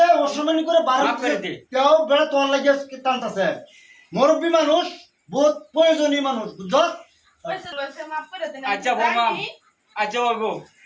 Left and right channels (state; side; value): identical; both; correlation 1.00